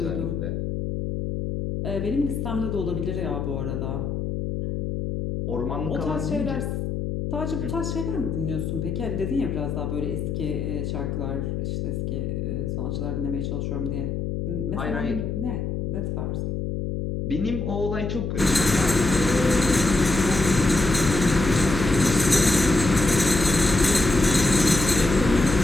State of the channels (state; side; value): noise; left; hum, 3 dB below the sound